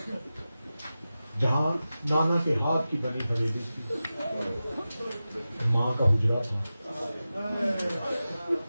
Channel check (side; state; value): both; inverted; correlation -0.94